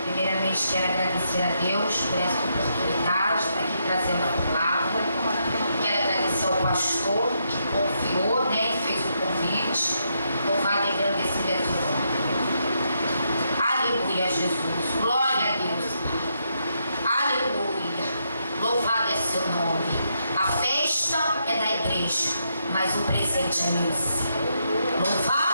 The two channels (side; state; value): both; inverted; correlation -0.79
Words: Primeiramente quero agradecer a Deus por essa oportunidade de estar aqui trazendo a palavra. Quero agradecer ao pastor que confiou, né, e fez o convite. Louvado e agradecido é teu nome. Aleluia, Jesus. Glória a Deus. Aleluia. Louvado é seu nome. A festa é da igreja, mas o presente é meu.